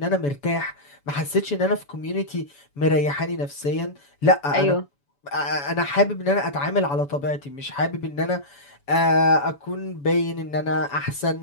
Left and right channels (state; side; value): late; right; 7.0 ms